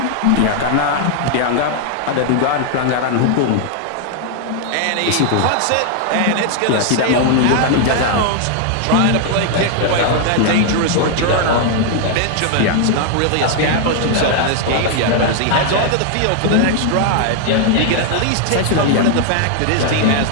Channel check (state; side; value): different; both; correlation 0.00